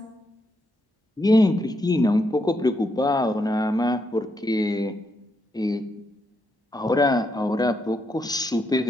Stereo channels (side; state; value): both; normal; correlation 0.80